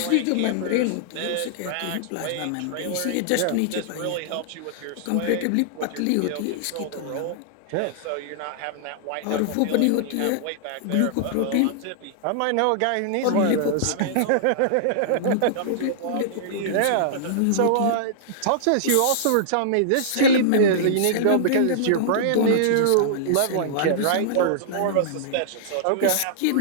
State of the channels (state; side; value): different; both; correlation -0.02